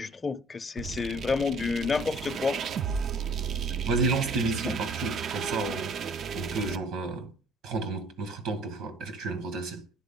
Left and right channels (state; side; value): normal; both; correlation 0.55